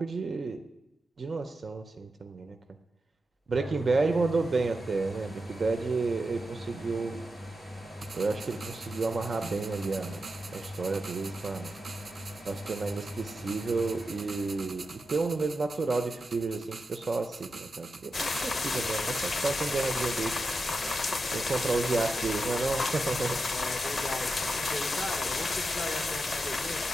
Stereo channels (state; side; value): normal; both; correlation 0.89